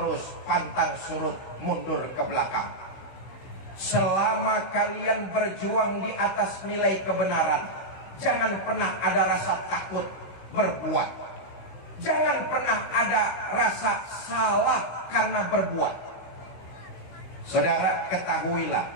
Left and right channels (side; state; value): right; late; 15 ms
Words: pantang surut, mundur ke belakang. Selama kalian berjuang di atas nilai kebenaran, jangan pernah ada rasa takut berbuat. Jangan pernah ada rasa salah karena berbuat. Saudara, ketahuilah,